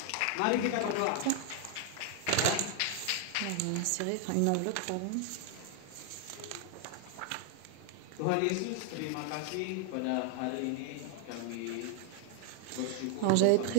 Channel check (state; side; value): different; both; correlation 0.00